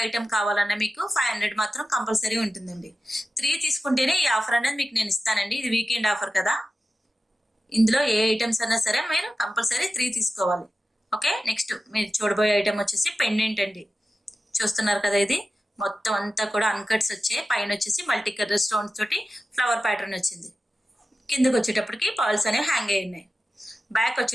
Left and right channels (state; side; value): normal; both; correlation 0.93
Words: ఐటమ్ కావాలన్నా మీకు 500 మాత్రం కంపల్సరీ ఉంటుందండి. 3 తీసుకుంటేనే ఈ ఆఫర్ అనేది మీకు నేను ఇస్తానండి. ఇది వీకెండ్ ఆఫర్ కదా, ఇందులో ఏ ఐటమ్స్ అన్నా సరే మీరు కంపల్సరీ 3 తీసుకోవాలి. ఓకే, నెక్స్ట్ మీరు చూడబోయే ఐటమ్ వచ్చేసి పెండెంట్ అండి. చూస్తున్నారు కదా, ఇది మొత్తం అంతా కూడా అన్కట్స్ వచ్చాయి. పైన వచ్చేసి మల్టీ కలర్ స్టోన్స్ తోటి ఫ్లవర్ ప్యాటర్న్ వచ్చింది. కిందకి వచ్చేటప్పటికి పర్ల్స్ అనేవి హ్యాంగ్ అయి ఉన్నాయి. బ్యాక్